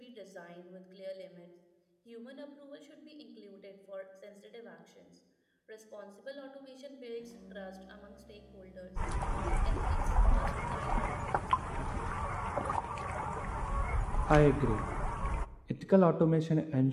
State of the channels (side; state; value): both; identical; correlation 1.00